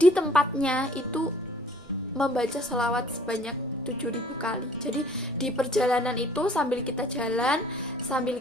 tempatnya itu membaca sholawat sebanyak 7.000 kali. Jadi di perjalanan itu sambil kita jalan, sambil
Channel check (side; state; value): both; normal; correlation 0.55